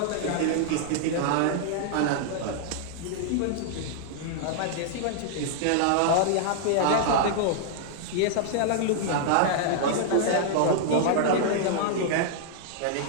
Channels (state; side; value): different; both; correlation -0.01